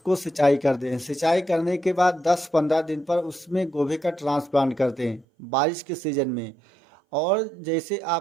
सिंचाई कर दें। सिंचाई करने के बाद 10-15 दिन पर उसमें गोभी का ट्रांसप्लांट करते हैं बारिश के सीज़न में। और जैसे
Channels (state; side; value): drops out; left; at 5.2 s